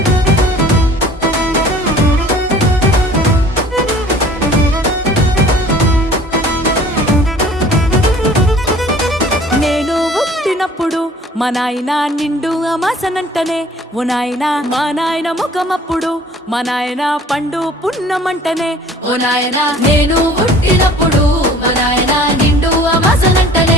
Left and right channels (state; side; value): normal; both; correlation 0.50